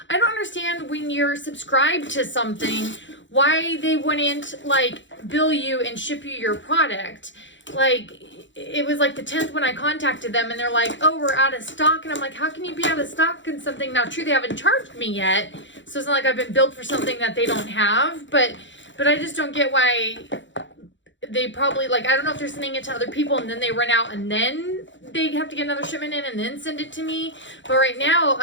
I don't understand when you're subscribed to something, why they wouldn't like bill you and ship you your product. Like, it was like the 10th when I contacted them and they're like, oh, we're out of stock. And I'm like, how can you be out of stock in something? Now, true, they haven't charged me yet. So it's not like I've been billed for something that they don't have. But I just don't get why they probably, like, I don't know if they're sending it to other people and then they run out and then they have to get another shipment in and then send it to me. But right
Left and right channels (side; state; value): right; late; 0.54 ms